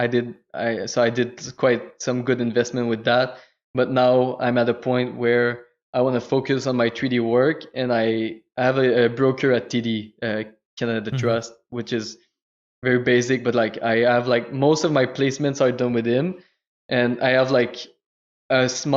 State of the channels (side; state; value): both; identical; correlation 1.00